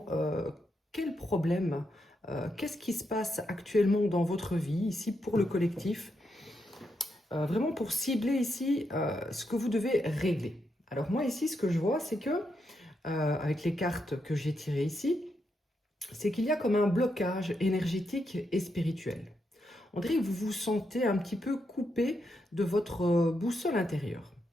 quel problème, qu'est-ce qui se passe actuellement dans votre vie ici pour le collectif. Vraiment pour cibler ici ce que vous devez régler. Alors moi ici ce que je vois c'est que avec les cartes que j'ai tirées ici, c'est qu'il y a comme un blocage énergétique et spirituel. On dirait que vous vous sentez un petit peu coupé de votre boussole intérieure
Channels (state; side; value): normal; both; correlation 0.82